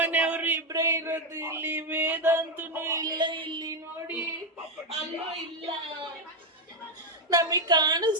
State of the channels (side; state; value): both; normal; correlation 0.06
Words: ಇಬ್ರೇ ಇರೋದು ಇಲ್ಲಿ. ವೇದಾಂತನು ಇಲ್ಲ ಇಲ್ಲಿ ನೋಡಿ, ಅಲ್ಲೂ ಇಲ್ಲ. ನಮಗ್